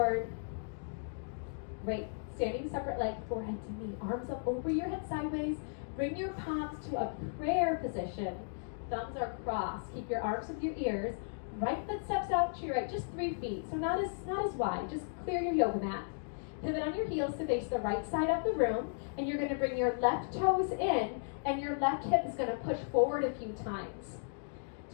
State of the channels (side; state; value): right; silent; digital silence